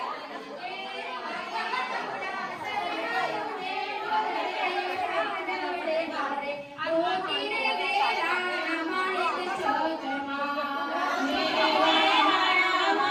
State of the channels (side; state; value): both; identical; correlation 1.00